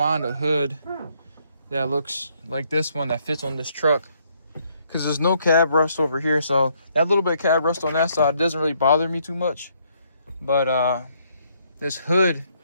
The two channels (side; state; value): both; inverted; correlation -0.70